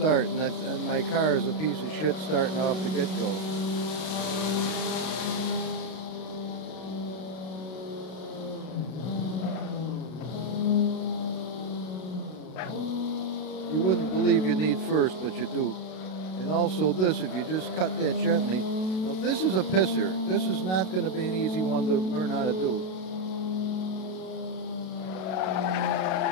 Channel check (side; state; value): right; late; 32 ms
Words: and my car is a piece of shit starting off the get-go. You wouldn't believe you need first, but you do. And also this, if you just cut that gently. Now this is a pisser. This is not going to be an easy one to learn how to do.